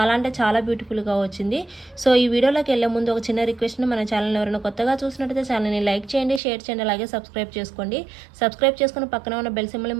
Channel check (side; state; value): left; drops out; at 6.4 s